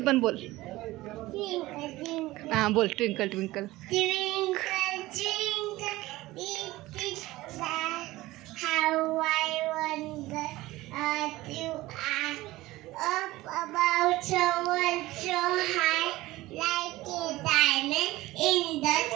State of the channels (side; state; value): left; quieter; 18.2 dB